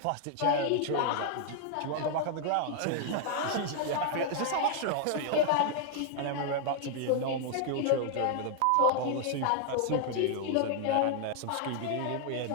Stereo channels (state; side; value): different; both; correlation 0.00